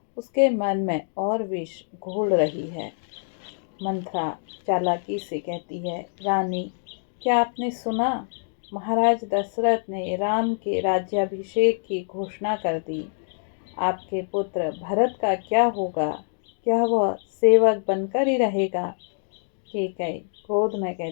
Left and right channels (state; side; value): silent; right; digital silence